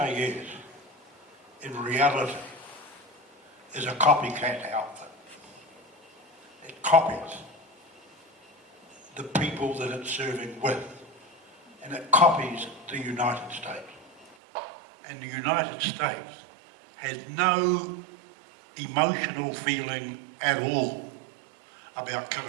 in reality, is a copycat outfit. It copies the people that it's serving with, and it copies the United States. And the United States has no emotional feeling at all about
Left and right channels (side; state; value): left; drops out; at 14.4 s